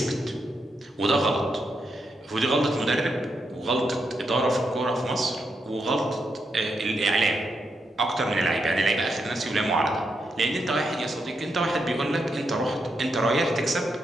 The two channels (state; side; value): normal; both; correlation 0.82